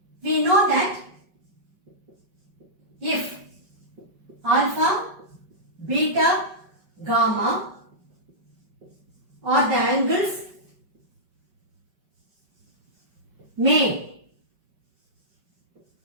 We know that if alpha, beta, gamma are the angles made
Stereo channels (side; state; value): left; late; 5.3 ms